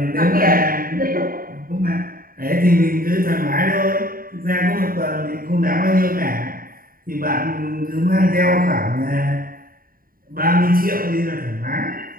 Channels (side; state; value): left; late; 0.42 ms